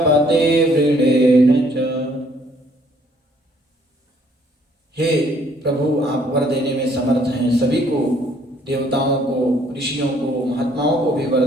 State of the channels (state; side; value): normal; both; correlation 0.63